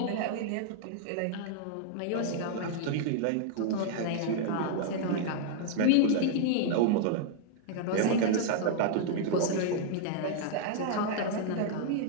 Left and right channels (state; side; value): different; both; correlation -0.01